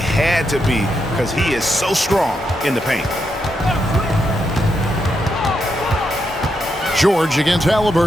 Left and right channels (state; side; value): normal; both; correlation 0.82